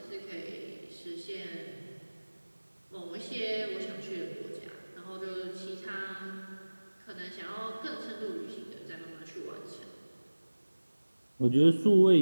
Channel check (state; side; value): inverted; both; correlation -1.00